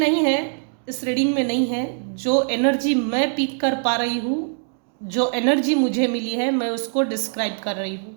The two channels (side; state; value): left; silent; digital silence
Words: है, इस रीडिंग में नहीं है। जो एनर्जी मैं पिक कर पा रही हूँ, जो एनर्जी मुझे मिली है, मैं उसको डिस्क्राइब कर रही हूँ,